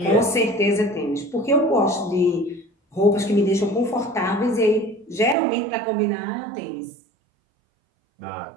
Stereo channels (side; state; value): left; drops out; at 5.4 s